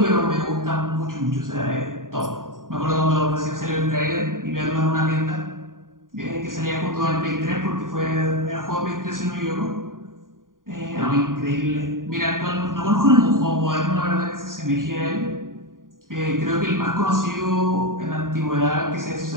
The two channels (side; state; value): left; late; 0.90 ms